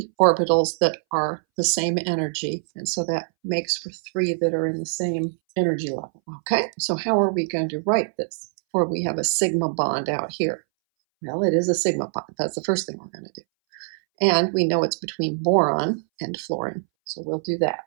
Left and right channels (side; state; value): left; silent; 62 dB below the other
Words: orbitals that are the same energy, and so that makes for 3 that are in the same energy level. Okay, so how are we going to write this? Or we have a sigma bond out here. Well, it is a sigma bond. That's the first thing we're going to do. And we know it's between boron and fluorine, so we'll do that.